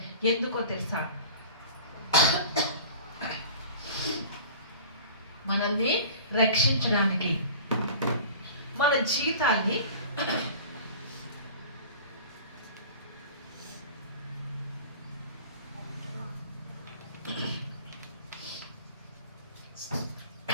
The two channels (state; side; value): inverted; both; correlation -0.41